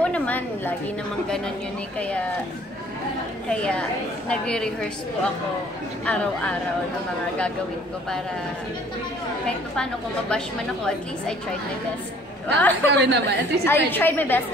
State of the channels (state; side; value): normal; both; correlation 0.56